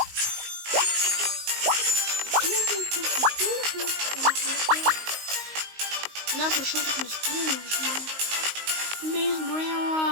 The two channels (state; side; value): late; left; 19 ms